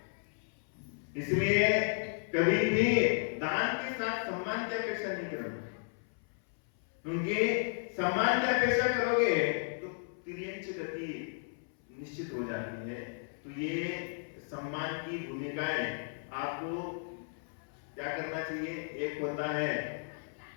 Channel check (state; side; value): silent; right; 55 dB below the other